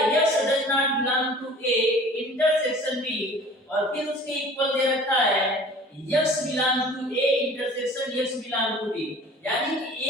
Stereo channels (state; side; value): normal; both; correlation 0.46